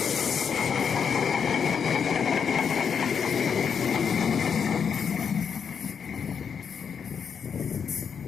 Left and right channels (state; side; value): quieter; right; 6.8 dB